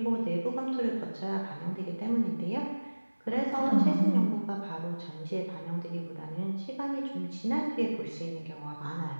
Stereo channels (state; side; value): inverted; both; correlation -1.00